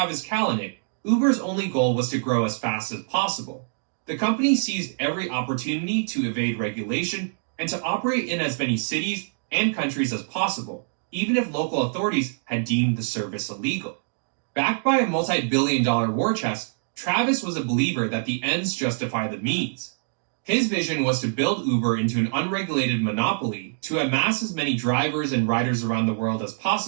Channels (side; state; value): left; silent; digital silence